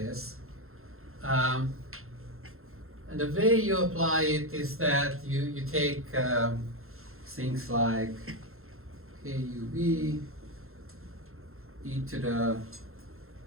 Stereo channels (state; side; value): late; left; 0.62 ms